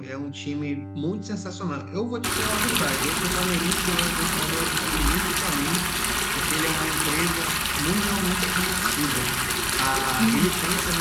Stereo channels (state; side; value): identical; both; correlation 1.00